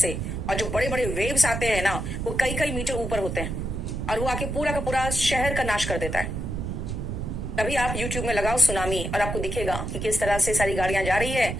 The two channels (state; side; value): noise; right; rumble, 4 dB below the sound